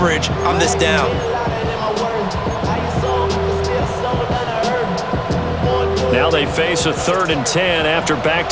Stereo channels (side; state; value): both; identical; correlation 1.00